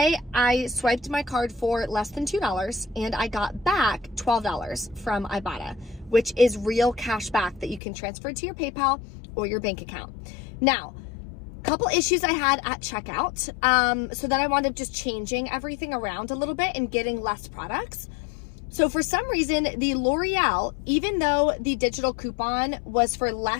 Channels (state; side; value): drops out; right; at 7.8 s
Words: I swiped my card for less than $2 and I got back $12 from Ibotta, which is real cash back that you can transfer to your PayPal or your bank account. Now, couple issues I had at checkout. So then I wound up just changing everything around a little bit and getting less products. So for some reason, the L'Oreal, even though the digital coupon was for